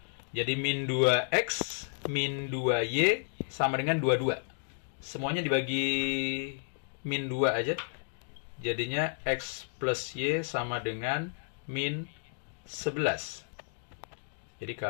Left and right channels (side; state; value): right; silent; digital silence